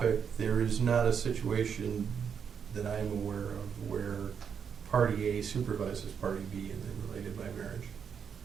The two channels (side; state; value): left; quieter; 7.1 dB